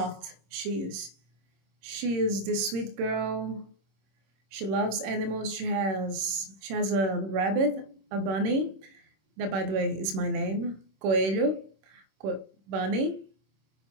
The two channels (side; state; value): left; late; 26 ms